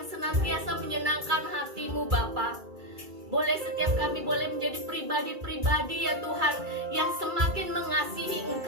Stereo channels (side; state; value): left; late; 2.3 ms